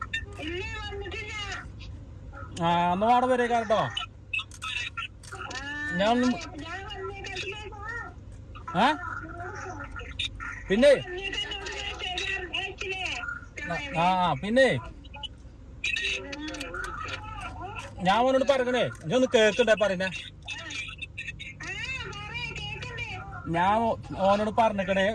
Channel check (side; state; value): both; identical; correlation 1.00